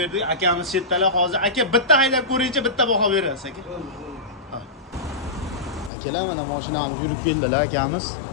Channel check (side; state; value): right; drops out; at 5.9 s